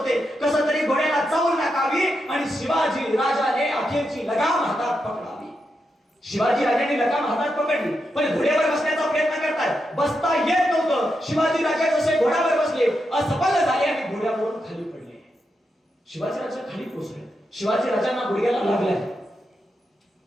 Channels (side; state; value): both; normal; correlation 0.85